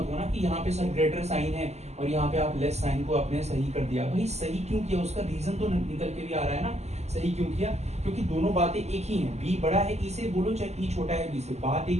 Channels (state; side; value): late; left; 0.32 ms